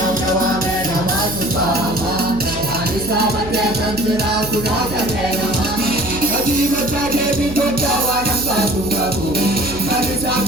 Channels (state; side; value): noise; right; hum, 11 dB below the sound